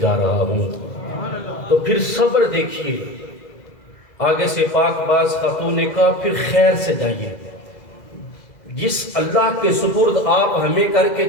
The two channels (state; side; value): late; right; 2.0 ms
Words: رہا ہوں۔ تو پھر صبر دیکھیے، آگے سے پاک باز خاتون نے کہا، پھر خیر سے جائیے، جس اللہ کے سپرد آپ ہمیں کر